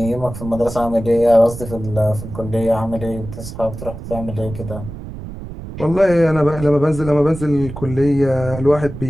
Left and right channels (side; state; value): right; noise; rumble, 11 dB below the sound